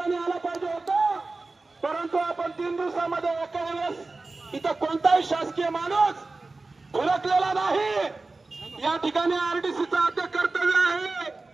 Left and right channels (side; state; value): left; quieter; 3.5 dB